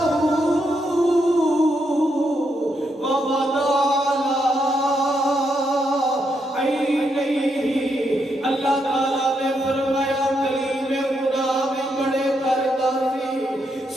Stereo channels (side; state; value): both; normal; correlation 0.79